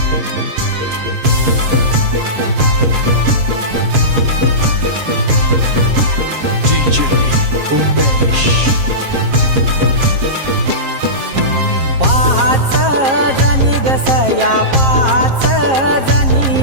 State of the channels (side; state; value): left; late; 7.5 ms